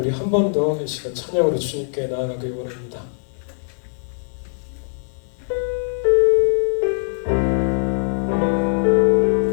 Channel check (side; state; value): right; silent; 65 dB below the other